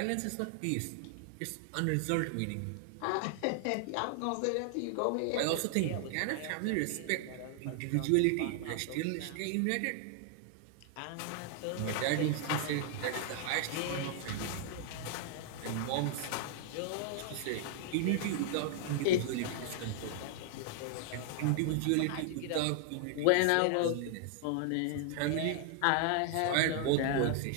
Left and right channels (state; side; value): different; both; correlation 0.00